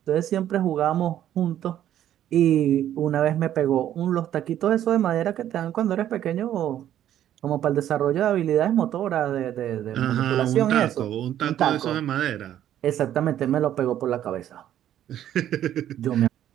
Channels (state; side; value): quieter; left; 11.4 dB